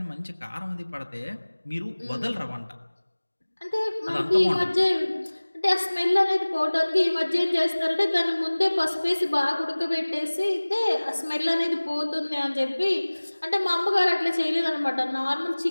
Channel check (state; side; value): inverted; both; correlation -1.00